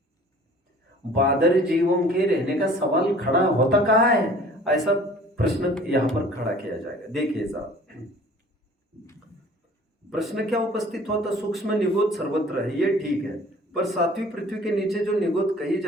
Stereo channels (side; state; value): both; normal; correlation 0.49